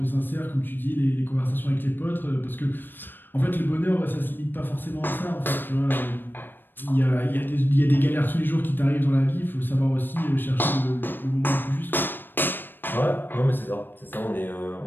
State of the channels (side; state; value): right; late; 0.095 ms